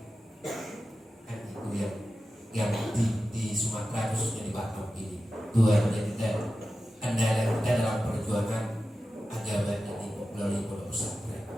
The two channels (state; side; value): normal; both; correlation 0.93